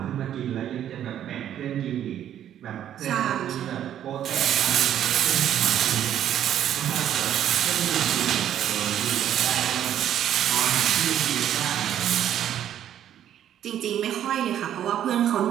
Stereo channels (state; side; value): quieter; left; 10.6 dB